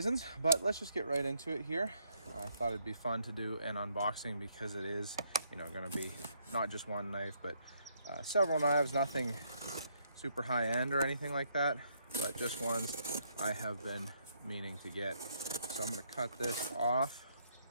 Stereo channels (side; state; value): both; inverted; correlation -0.72